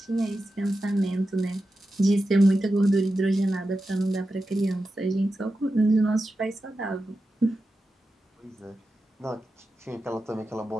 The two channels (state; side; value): normal; both; correlation 0.91